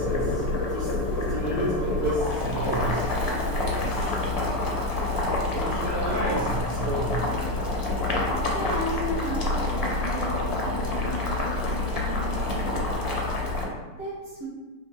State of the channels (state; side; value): late; left; 6.8 ms